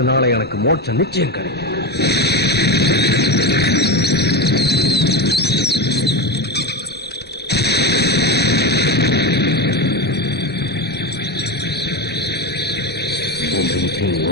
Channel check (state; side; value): normal; both; correlation 0.19